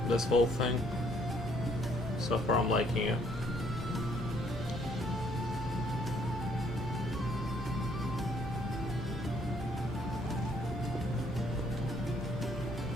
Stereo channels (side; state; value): both; normal; correlation 0.65